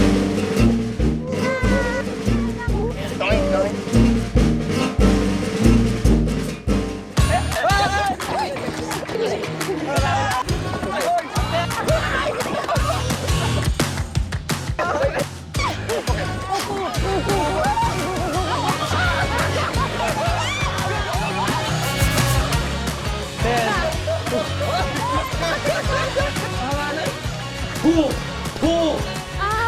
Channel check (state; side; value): identical; both; correlation 1.00